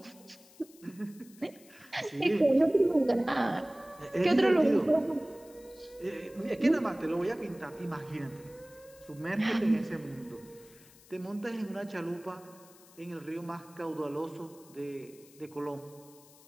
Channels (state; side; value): noise; left; hiss, 24 dB below the sound